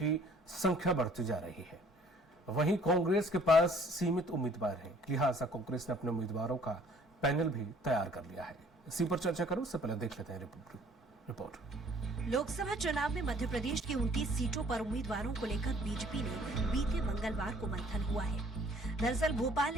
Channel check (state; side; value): normal; both; correlation 0.56